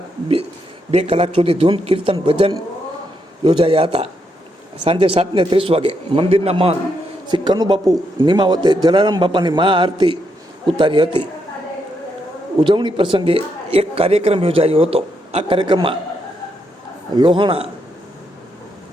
2 કલાક સુધી ધૂન કીર્તન ભજન યોજાયા હતા. સાંજે 7:30 વાગે મંદિરના મહંત શ્રી કનુબાપુ નિમાવતે જલારામ બાપાની મહાઆરતી ઉતારી હતી. ઉજવણી પ્રસંગે એક કાર્યક્રમ યોજાયો હતો. આ કાર્યક્રમમાં લોહાણા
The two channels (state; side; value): normal; both; correlation 0.79